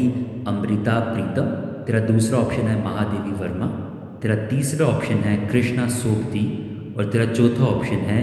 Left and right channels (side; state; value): both; identical; correlation 1.00